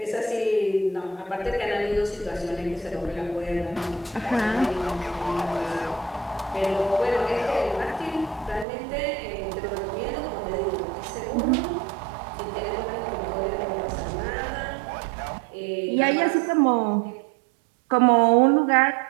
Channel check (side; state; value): left; drops out; at 8.7 s